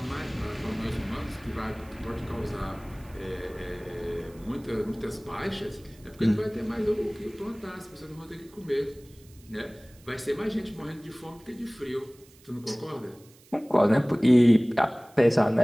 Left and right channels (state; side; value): noise; right; hiss, 26 dB below the sound